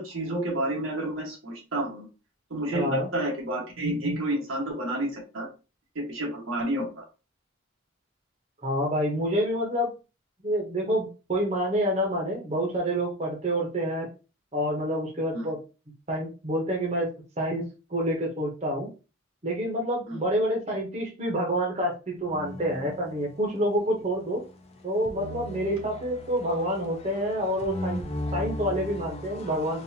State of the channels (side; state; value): both; normal; correlation 0.26